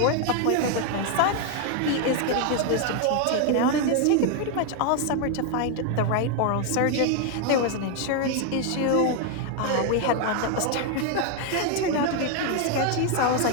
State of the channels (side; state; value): both; different; correlation 0.01